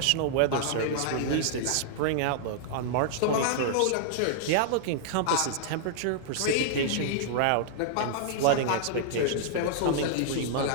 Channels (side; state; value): both; different; correlation -0.01